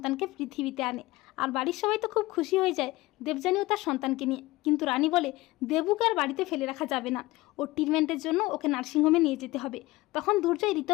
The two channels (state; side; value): quieter; right; 19.5 dB